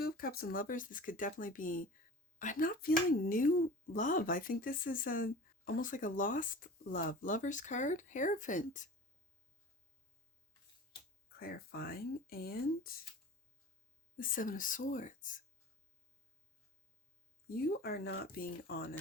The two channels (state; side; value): normal; both; correlation 0.38